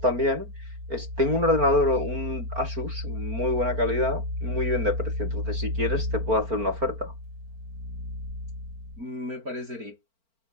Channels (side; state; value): left; late; 4.4 ms